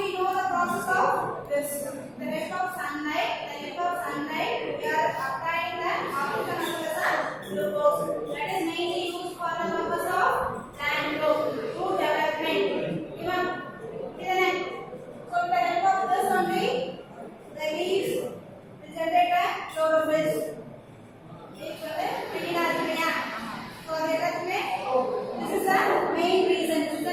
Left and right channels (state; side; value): identical; both; correlation 1.00